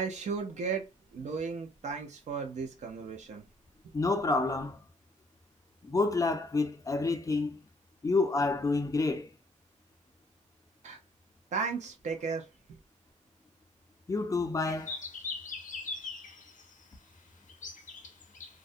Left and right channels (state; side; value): normal; both; correlation 0.63